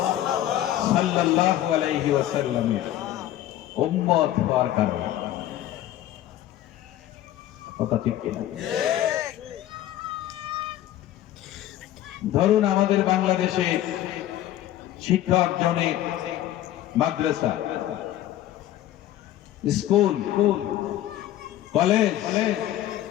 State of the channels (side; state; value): right; quieter; 13.3 dB